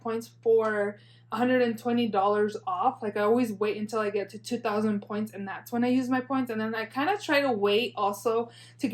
for $120 off. Like, I always wait until I get to 2,000 points, and that's when I use my points. And then I kind of try to wait also to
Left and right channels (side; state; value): both; identical; correlation 1.00